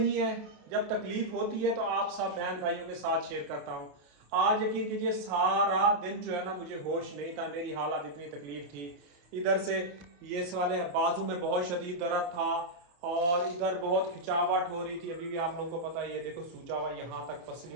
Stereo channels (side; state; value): left; late; 28 ms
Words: है, जब तकलीफ होती है तो आप सब बहन भाइयों के साथ शेयर करता हूँ। आज यकीन कीजिए सारा दिन जो है ना मुझे होश नहीं था, मेरी हालत इतनी तकलीफ थी। इधर से ये वाले बाजू में बहुत शदीद दर्द था और इधर बहुत खिंचावट हो रही थी। अभी भी आप लोगों को पता है ये देखो सूजा हुआ यहाँ तक